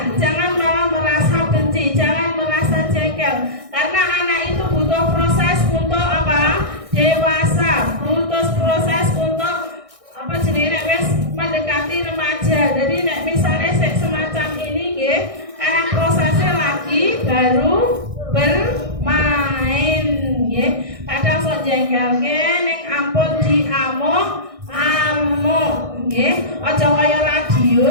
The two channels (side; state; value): left; late; 1.6 ms